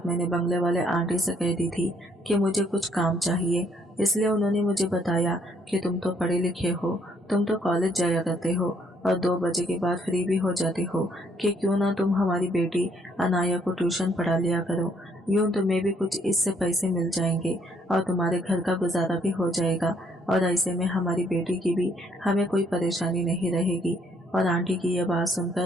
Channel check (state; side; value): normal; both; correlation 0.67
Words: मैंने बंगले वाले आंटी से कह दी थी कि मुझे कुछ काम चाहिए। इसलिए उन्होंने मुझे बताया कि तुम तो पढ़े लिखे हो, तुम तो कॉलेज जाया करते हो और 2 बजे के बाद फ्री भी हो जाते हो, कि क्यों ना तुम हमारी बेटी अनाया को ट्यूशन पढ़ा लिया करो। यूँ तुम्हें भी कुछ इससे पैसे मिल जाएंगे और तुम्हारे घर का गुजारा भी हो जाएगा, और ऐसे में हमारी बेटी की भी हमें कोई परेशानी नहीं रहेगी। और आंटी की यह बात